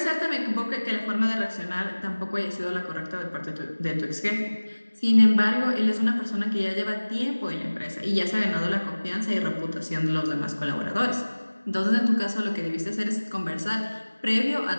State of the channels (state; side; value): inverted; both; correlation -1.00